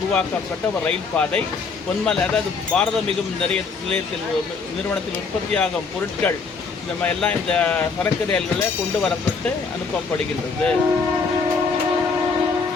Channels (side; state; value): right; quieter; 4.8 dB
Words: ஒரு ரயில் பாதை. பொன்மலை, அதாவது பாரத மிகுமின் நிலையத்தில் நிறுவனத்தில் உற்பத்தியாகும் பொருட்கள் இந்த மாதிரி எல்லாம் இந்த சரக்கு ரயில்களில் கொண்டு வரப்பட்டு அனுப்பப்படுகின்றது.